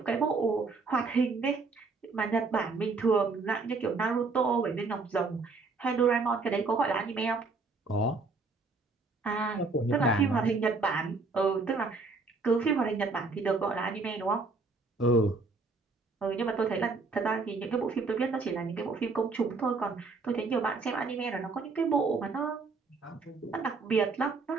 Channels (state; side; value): quieter; left; 4.0 dB